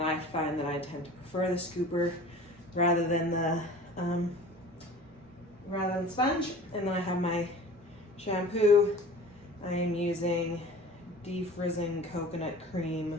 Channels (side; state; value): both; normal; correlation 0.42